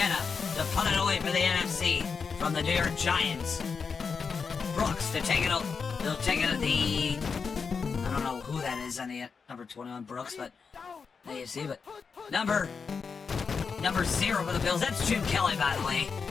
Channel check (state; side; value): quieter; right; 5.5 dB